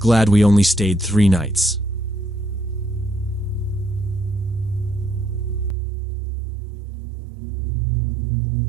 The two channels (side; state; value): left; drops out; at 5.8 s